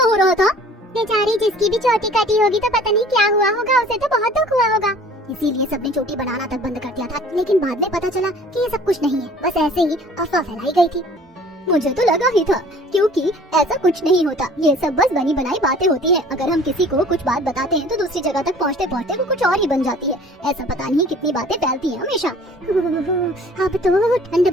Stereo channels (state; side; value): normal; both; correlation 0.50